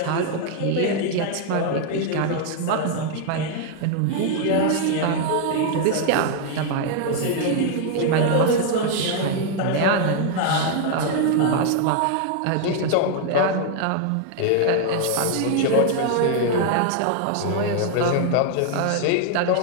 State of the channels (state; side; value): different; both; correlation 0.00